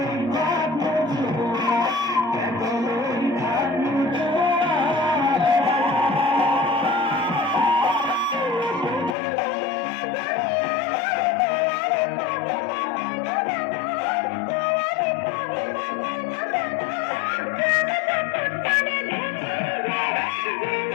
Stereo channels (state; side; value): drops out; right; at 9.2 s